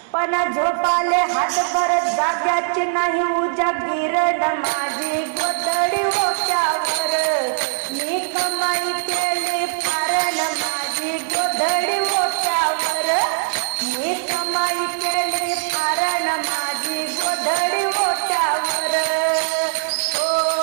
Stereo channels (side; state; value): left; silent; digital silence